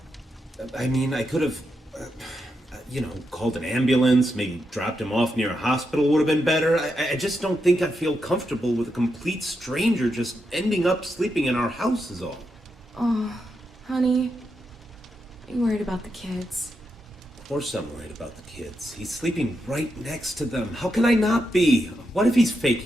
I mean, I could have, called an ambulance, maybe dropped him off near a hospital would have been better. I just don't think I feel comfortable with a complete stranger just ending up sleeping in our house is all. Oh, honey, are you worried about the kids? Of course I'm worried about the kids. He's sleeping right next to them. How can I not be? What if he's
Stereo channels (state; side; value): normal; both; correlation 0.84